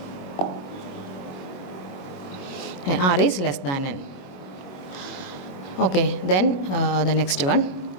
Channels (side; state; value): right; late; 22 ms